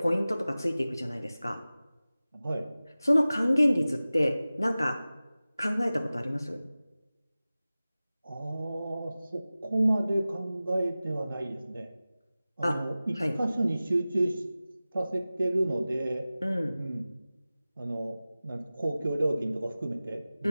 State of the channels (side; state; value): both; inverted; correlation -0.97